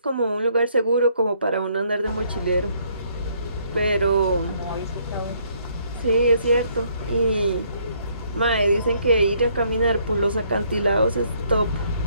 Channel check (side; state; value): both; inverted; correlation -0.67